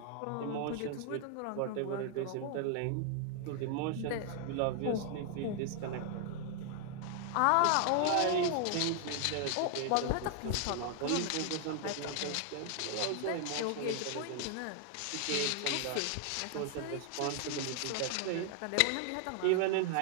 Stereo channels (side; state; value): both; different; correlation 0.00